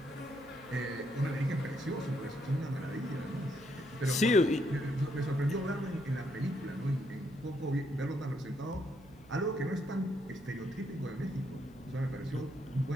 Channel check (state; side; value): noise; right; hum, 22 dB below the sound